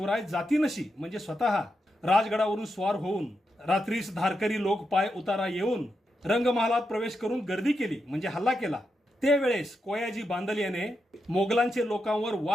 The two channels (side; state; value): both; normal; correlation 0.85